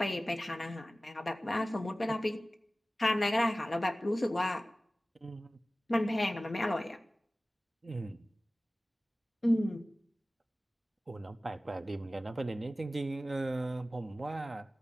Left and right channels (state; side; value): normal; both; correlation 0.97